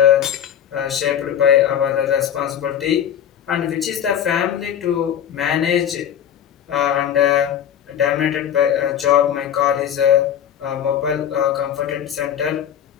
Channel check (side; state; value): right; quieter; 9.5 dB